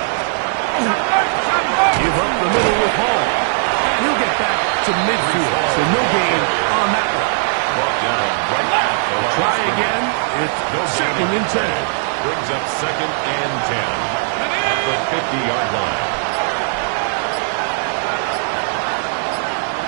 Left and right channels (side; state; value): left; silent; digital silence